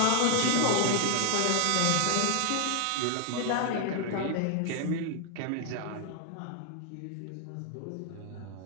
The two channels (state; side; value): different; both; correlation 0.00